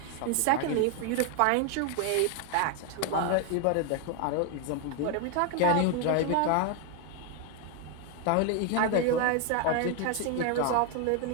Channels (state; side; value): different; both; correlation 0.01